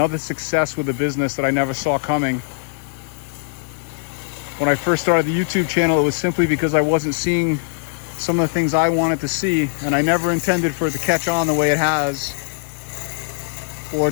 success with a business that I never saw coming. When I first started the YouTube channel, it was simply because I wasn't seeing some of the things I wanted to see, and I never intended for it to catch on the way it has or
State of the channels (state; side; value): silent; right; 64 dB below the other